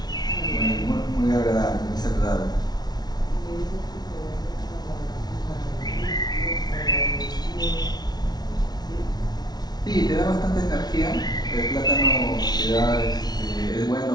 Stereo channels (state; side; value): late; right; 0.19 ms